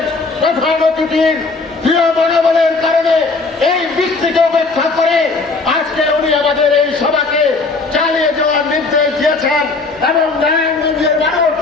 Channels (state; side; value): quieter; right; 3.8 dB